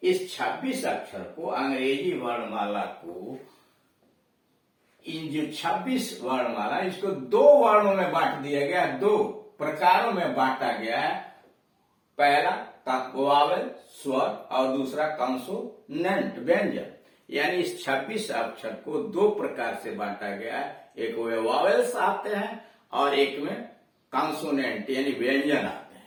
इस 26 अक्षर को अंग्रेजी वर्णमाला को, इन जो 26 वर्णमाला इसको 2 वर्णों में बांट दिया गया, 2 प्रकारों में बांटा गया है। पहला वावेल स्वर और दूसरा कॉन्सोनेंट व्यंजन। यानी इस 26 अक्षर को 2 प्रकार से बांटा गया है। एक में वावेल्स आते हैं और एक में कॉन्सोनेंट यानी व्यंजन आते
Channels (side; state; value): both; identical; correlation 1.00